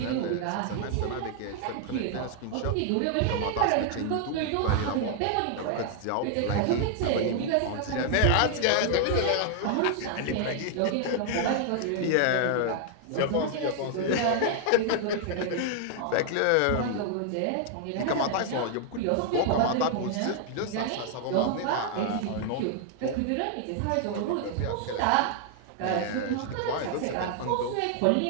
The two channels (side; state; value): both; different; correlation 0.00